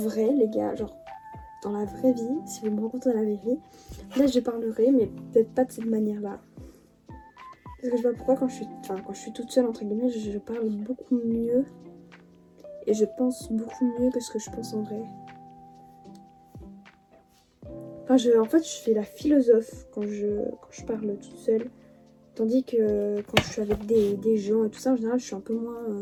les gars, genre dans la vraie vie, si vous me rencontrez dans la vraie vie, là je parlerai mais peut-être pas de cette manière-là. Parce que je sais pas pourquoi quand je suis toute seule entre guillemets, je parle beaucoup mieux et je pense beaucoup mieux que ce que je pense en vrai. Enfin, en fait, je fais la philosophe quand je parle toute seule. Tandis que quand je suis avec des gens et tout ça, en général, je suis un peu moins...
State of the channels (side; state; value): both; identical; correlation 1.00